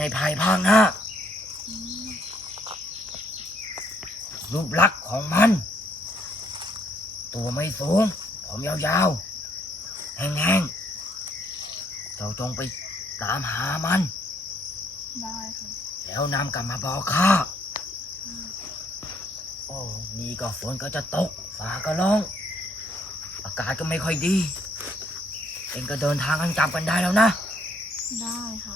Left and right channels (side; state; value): both; normal; correlation 0.68